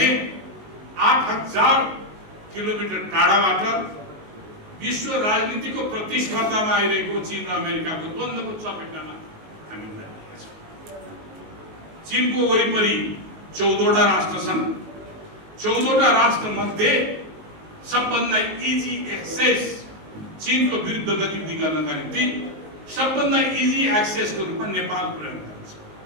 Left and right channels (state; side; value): late; left; 19 ms